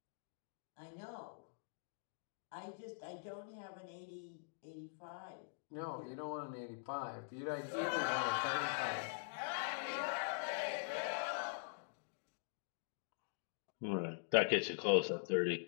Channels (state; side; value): silent; right; digital silence